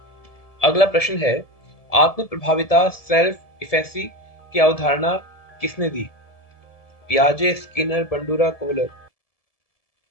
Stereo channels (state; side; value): late; right; 1.7 ms